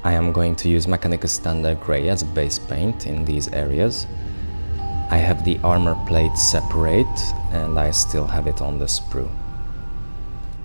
I am going to use Mechanicus Standard Grey as a base paint in these areas. I have the armor plate separate and I still have it on the sprue.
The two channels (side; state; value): both; inverted; correlation -1.00